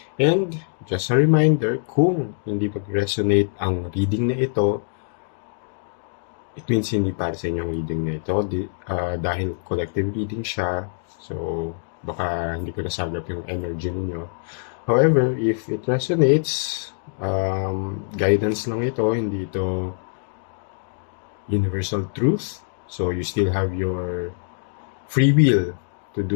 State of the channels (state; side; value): silent; right; digital silence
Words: And just a reminder, kung hindi mag-resonate ang reading na ito, it means hindi para sa inyong reading na ito dahil collective reading siya. So, baka hindi ko nasagap yung energy ninyo. However, if it resonates, guidance lang ito, hindi ito universal truth. So, you still have your free will to do